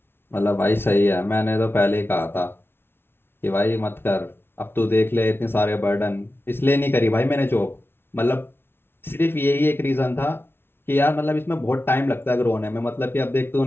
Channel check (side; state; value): right; late; 0.11 ms